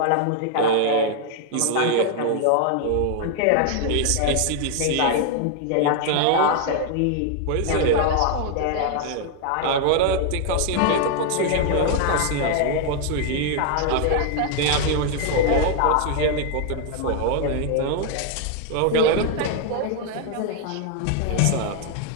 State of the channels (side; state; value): both; different; correlation 0.00